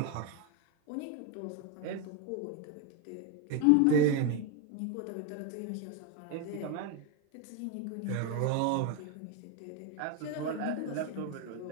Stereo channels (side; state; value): both; different; correlation 0.02